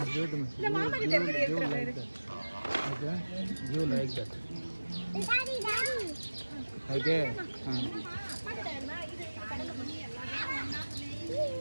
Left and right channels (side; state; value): both; inverted; correlation -1.00